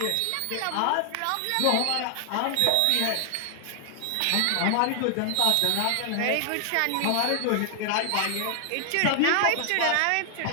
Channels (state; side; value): different; both; correlation 0.00